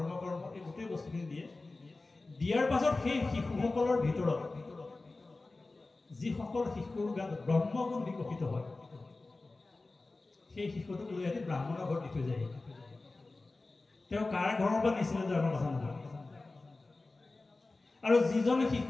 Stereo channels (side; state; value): right; quieter; 3.3 dB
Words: এই গোটেই বস্তুখিনি দিয়ে দিয়াৰ পাছত সেই শিশুসকলৰ ভিতৰত যিসকল শিশুৰ গাত ব্ৰহ্মগুণ বিকশিত হয় সেই শিশুটোক লৈ আহি ব্ৰাহ্মণৰ ঘৰত দি থৈ যায় তেওঁ কাৰ ঘৰৰ পৰা নিছিলে আমাৰ কথা নহয় আৰু যিজন